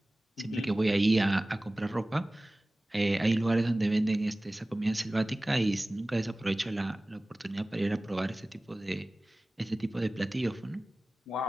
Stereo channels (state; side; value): normal; both; correlation 0.98